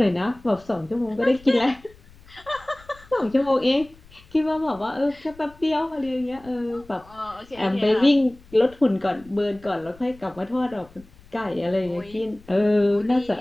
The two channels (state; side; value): noise; left; rumble, 25 dB below the sound